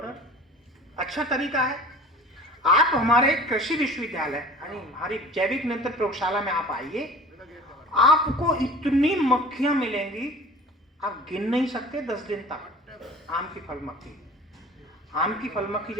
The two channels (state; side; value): normal; both; correlation 0.42